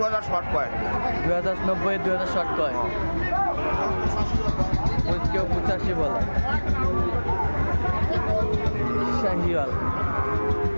শর্ট কয়। 2090 2000 শর্ট কয়, কেউ 85 বলে। শাহিওয়াল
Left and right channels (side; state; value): both; inverted; correlation -1.00